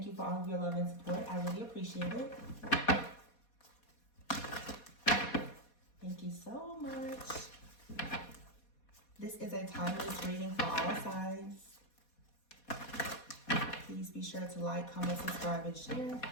you for all of your love and support. I really appreciate it. Thank you so much. This is a timeless reading for all signs. Please be sure to like, comment, subscribe, and share.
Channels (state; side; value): late; right; 4.2 ms